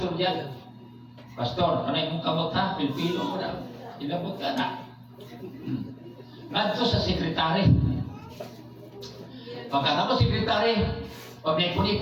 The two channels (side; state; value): both; identical; correlation 1.00